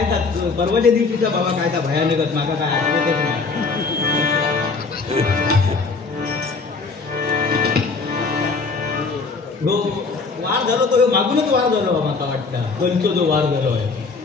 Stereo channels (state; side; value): quieter; right; 4.3 dB